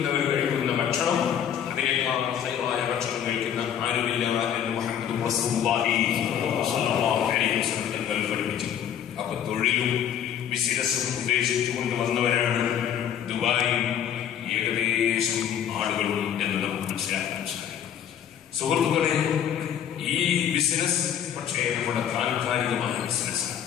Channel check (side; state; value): right; quieter; 9.3 dB